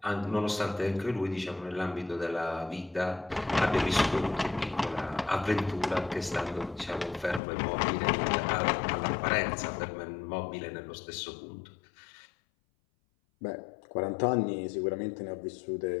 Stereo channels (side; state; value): right; drops out; at 7.4 s